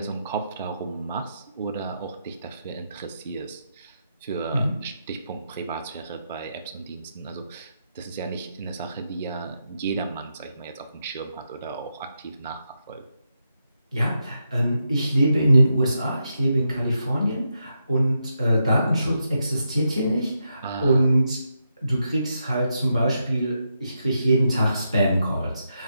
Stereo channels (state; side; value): inverted; both; correlation -0.84